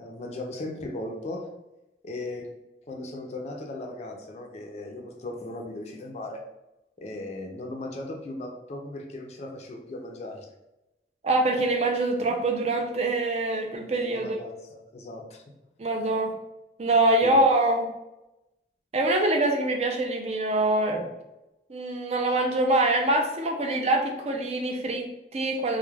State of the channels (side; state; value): both; normal; correlation 0.13